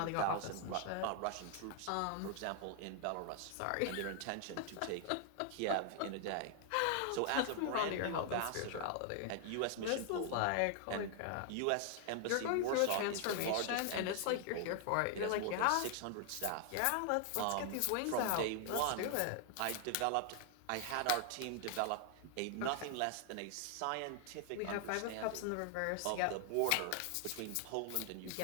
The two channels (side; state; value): both; different; correlation 0.00